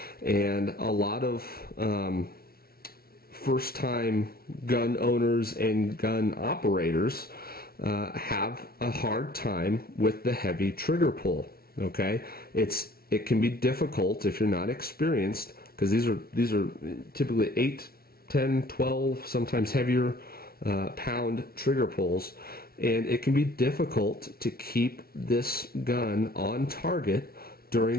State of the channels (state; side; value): late; right; 0.44 ms